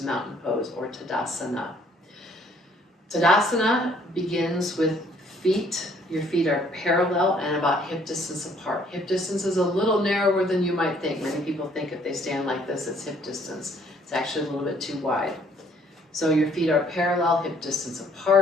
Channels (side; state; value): both; normal; correlation 0.62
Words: mountain pose or Tadasana. Tadasana begins with feet. Your feet are parallel and about hip distance apart. Hip distance is a little narrower than you might think. Many people think if they stand like this, it's hip distance. It's actually a little bit too wide. So your feet are parallel, hip distance